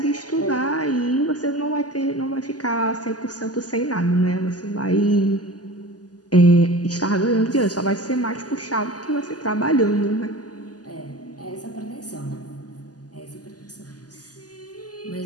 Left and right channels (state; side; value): late; right; 0.68 ms